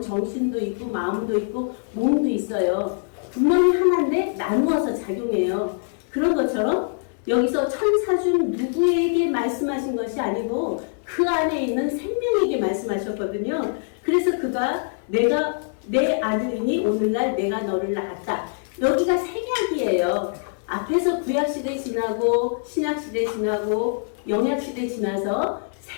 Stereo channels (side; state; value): right; silent; digital silence